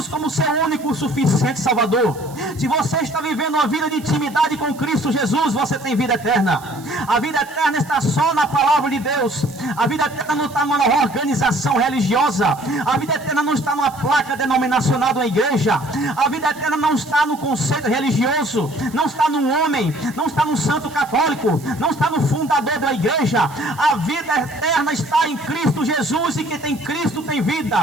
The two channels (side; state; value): right; noise; hiss, 22 dB below the sound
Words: como seu único suficiente Salvador, se você está vivendo uma vida de intimidade com Cristo Jesus, você tem vida eterna. A vida eterna está só na palavra de Deus. A vida eterna não está numa organização religiosa. A vida eterna não está numa placa denominacional da igreja. A vida eterna não está no conceito religioso, não está num homem, não está no santo católico, não está no fundador da igreja. A vida eterna está em Cristo Jesus, e quem tem Cristo tem vida.